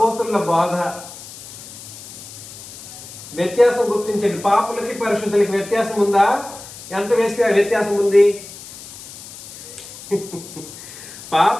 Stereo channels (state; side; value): noise; left; hiss, 15 dB below the sound